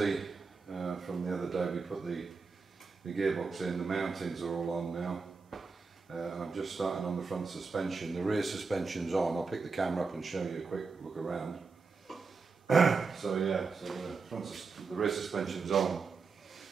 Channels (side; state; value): left; quieter; 4.7 dB